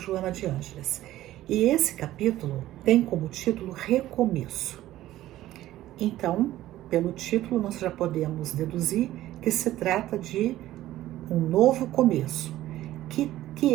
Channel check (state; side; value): quieter; left; 14.6 dB